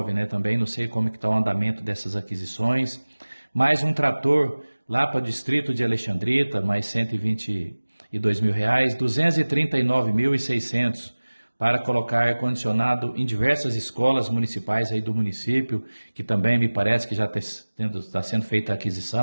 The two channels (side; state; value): both; inverted; correlation -1.00